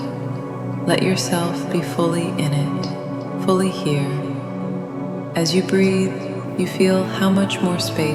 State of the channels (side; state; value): both; identical; correlation 1.00